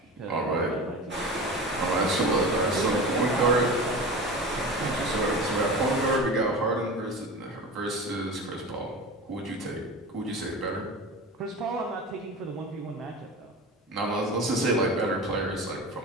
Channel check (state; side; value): normal; both; correlation 0.31